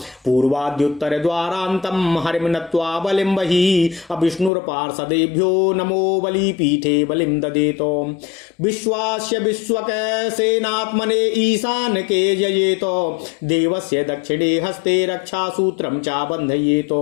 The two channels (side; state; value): right; drops out; at 4.5 s